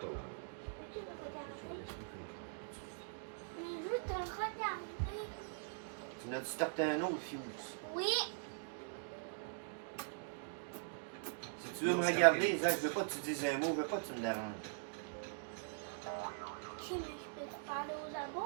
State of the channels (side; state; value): left; silent; digital silence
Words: Peux-tu le regarder? Mais juste de regarder. Tu n'as-tu starté un autre fuse? Oui. Si tu veux me regarder, Zach, je veux pas que tu dises un mot, je veux pas que tu me déranges. Ok, mais je peux te parler aux